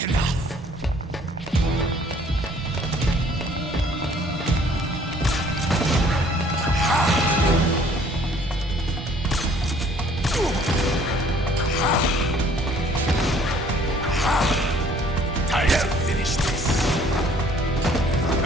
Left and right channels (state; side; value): normal; both; correlation 0.58